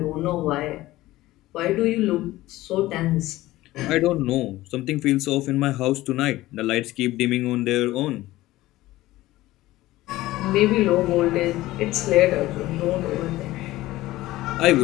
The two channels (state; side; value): quieter; right; 17.1 dB